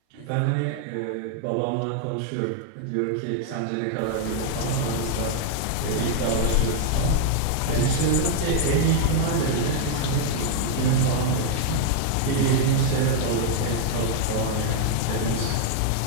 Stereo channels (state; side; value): different; both; correlation 0.00